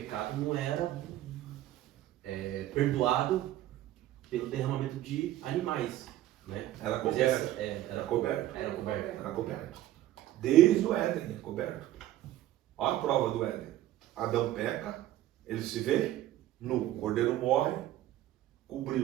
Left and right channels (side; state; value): left; quieter; 13.9 dB